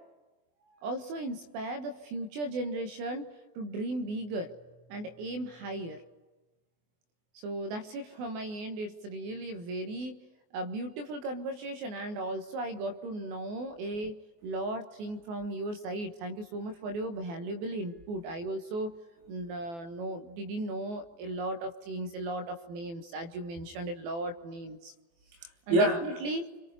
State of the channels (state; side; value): late; left; 24 ms